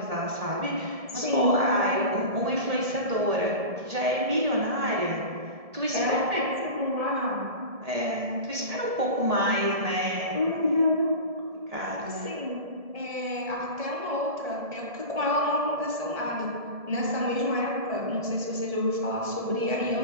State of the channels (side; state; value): left; late; 1.7 ms